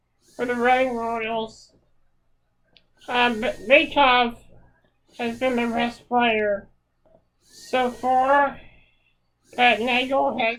for the Reading Royals. Beethoven has been the best player so far. But Nagel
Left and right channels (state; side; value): identical; both; correlation 1.00